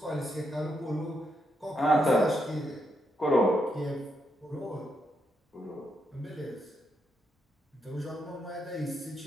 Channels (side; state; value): both; normal; correlation 0.80